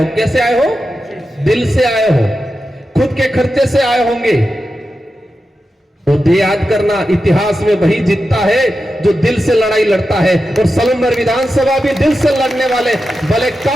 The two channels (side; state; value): both; normal; correlation 0.90